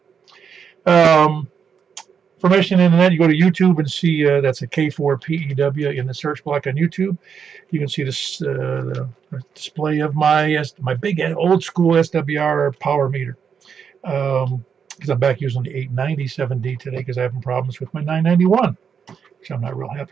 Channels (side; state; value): left; quieter; 6.9 dB